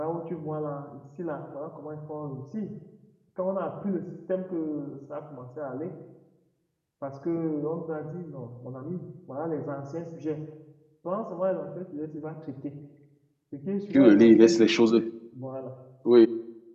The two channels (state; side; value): identical; both; correlation 1.00